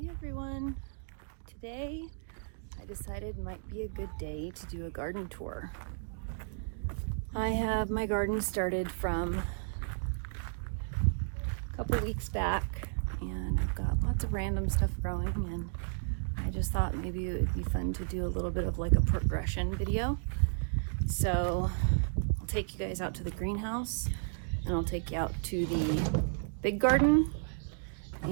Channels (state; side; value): silent; left; digital silence